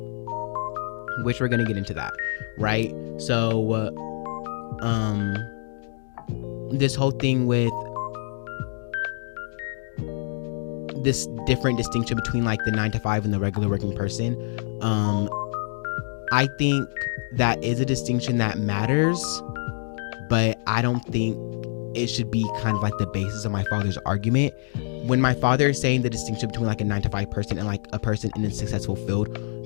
which we're gonna get into that, right? So this whole thing with this different distinction between like the 9-to-5 and the regular working person, I think that is a distinction that matters, but I don't think it should be kind of like the basis of my father's argument. When my father is saying the distinction between like a 9-to-5 person and like a person in a successful field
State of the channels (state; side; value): silent; right; digital silence